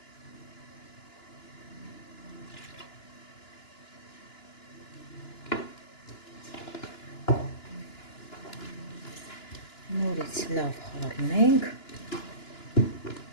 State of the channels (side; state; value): right; late; 2.9 ms